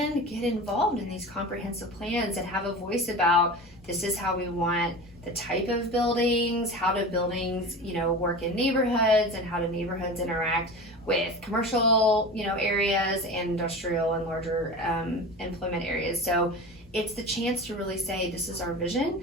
get involved in these comprehensive plans and have a voice about this is how we want the type of buildings, how do buildings, work in neighborhoods, and how do neighborhoods interact with commercial, areas and industrial and larger employment areas. So it's the chance to really say this is our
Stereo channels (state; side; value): noise; left; hum, 25 dB below the sound